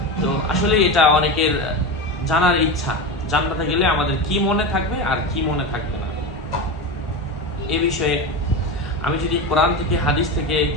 তো আসলে এটা অনেকের জানার ইচ্ছা, জান্নাতে গেলে আমাদের কি মনে থাকবে আর কি মনে থাকবে না। এ বিষয়ে আমি যদি কোরআন থেকে হাদিস থেকে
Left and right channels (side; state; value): both; normal; correlation 0.21